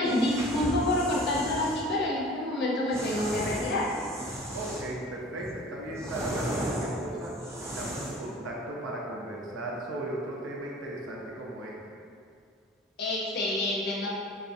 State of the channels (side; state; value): both; normal; correlation 0.43